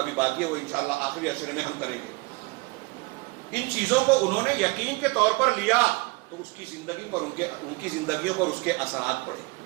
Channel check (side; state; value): left; quieter; 25.5 dB